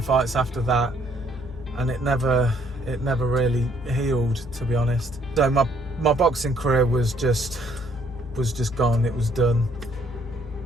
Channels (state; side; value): normal; both; correlation 0.65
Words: fights after that, and it never really healed, to be honest. So my boxing career was just gone, it was done.